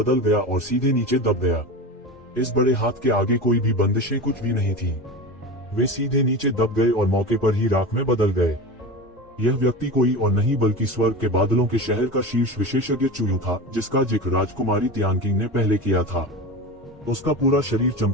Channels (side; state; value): both; normal; correlation 0.27